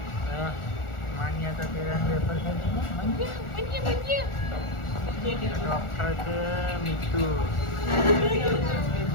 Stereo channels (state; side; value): late; right; 1.4 ms